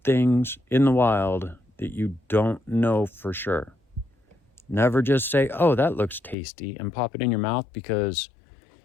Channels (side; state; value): right; drops out; at 6.4 s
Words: things in the wild that you don't know for sure. Never just say, oh, that looks tasty, and pop it in your mouth because